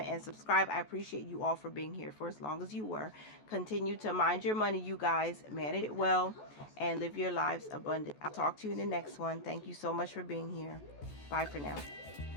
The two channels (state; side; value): late; right; 14 ms